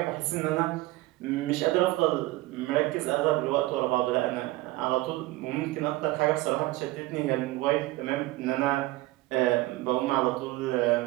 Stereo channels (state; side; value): quieter; left; 18.9 dB